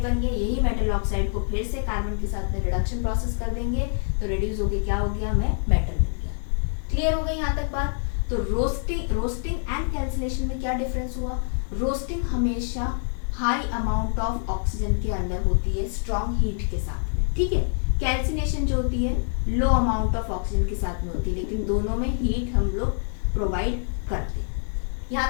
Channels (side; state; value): right; silent; digital silence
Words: बन गया। यही मेटल ऑक्साइड को फिर से कार्बन के साथ में रिडक्शन प्रोसेस कर देंगे तो रिड्यूस होके क्या हो गया, हमें मेटल मिल गया। क्लियर हो गई यहाँ तक बात। तो रोस्टिंग एंड कैल्सिनेशन में क्या डिफरेंस हुआ, रोस्टिंग हमेशा हाई अमाउंट ऑफ ऑक्सीजन के अंदर होती है स्ट्रॉन्ग हीट के साथ में, ठीक है। कैल्सिनेशन जो होती है लो अमाउंट ऑफ ऑक्सीजन के साथ में होती है, लेकिन दोनों में हीट हम लोग प्रोवाइड करते हैं।